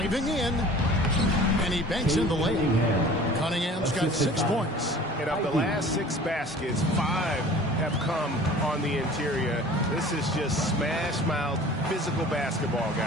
in. And he banks in the layup. Cunningham's got 6 points. And of the last 6 baskets, 5 have come on the interior. This is just smash-mouth physical basketball,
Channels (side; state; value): both; normal; correlation 0.45